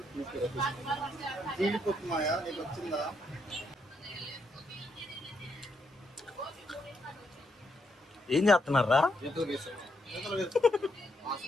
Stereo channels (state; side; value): normal; both; correlation 0.78